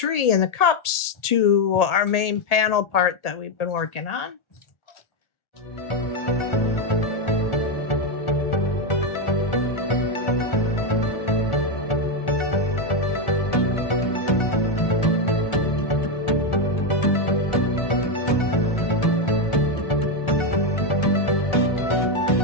and the cups to our main panel part that we've been working on.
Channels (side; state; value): right; late; 1.8 ms